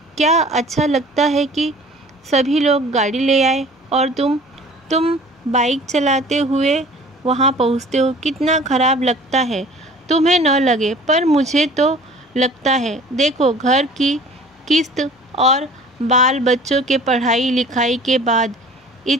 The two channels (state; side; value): normal; both; correlation 0.47